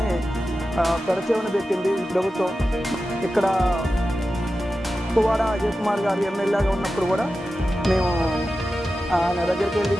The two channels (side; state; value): both; normal; correlation 0.93